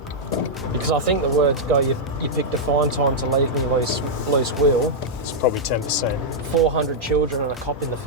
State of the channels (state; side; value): normal; both; correlation -0.06